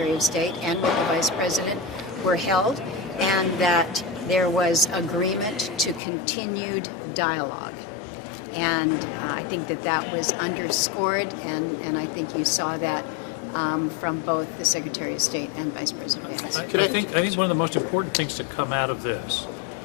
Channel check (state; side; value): drops out; right; at 6.0 s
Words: of State and with the Vice President were held, and that there was agreement to continued dialogue. And I think that was underscored, and I think you saw that from both the Secretary of State and Vice President Vance. I think one of the most important things to come out of this